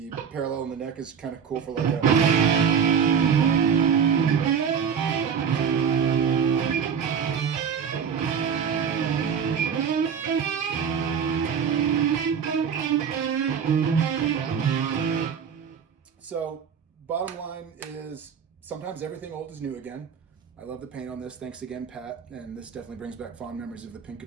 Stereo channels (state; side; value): quieter; left; 7.1 dB